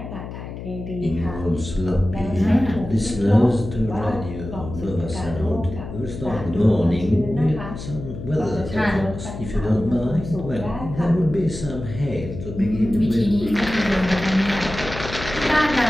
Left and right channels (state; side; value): noise; left; hum, 10 dB below the sound